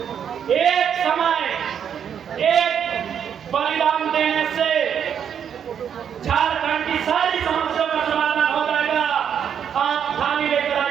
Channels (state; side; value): quieter; left; 8.2 dB